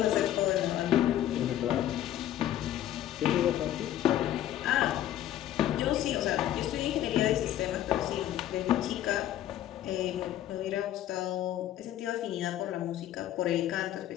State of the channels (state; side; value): quieter; right; 12.3 dB